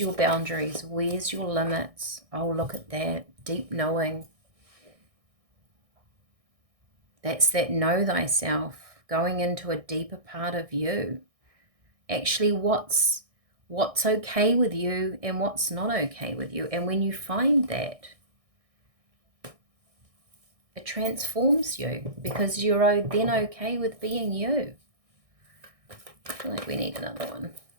boundaries? Where's your limits? Oh, look at that. Deep knowing. That's that know thyself. Going into a deeper part of you. Actually, what's okay with you and what's not okay with you. And when you find that, it transforms you because you're then okay with being you. I feel like we need another one.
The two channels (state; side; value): late; left; 1.6 ms